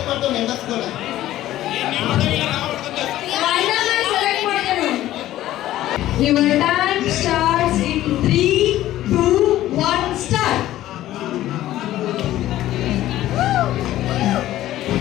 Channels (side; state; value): right; quieter; 14.2 dB